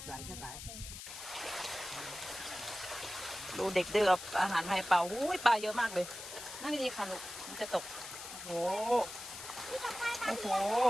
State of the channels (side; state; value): left; noise; hiss, 10 dB below the sound